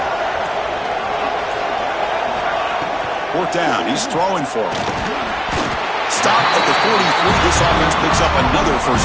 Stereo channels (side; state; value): both; identical; correlation 1.00